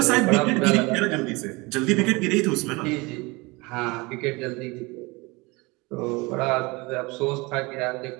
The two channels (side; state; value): left; quieter; 24.9 dB